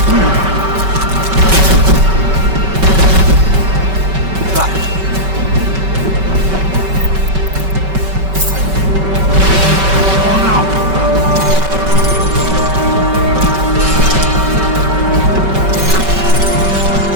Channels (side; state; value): left; late; 5.2 ms